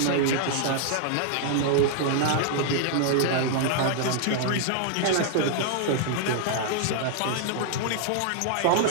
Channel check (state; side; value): different; both; correlation -0.01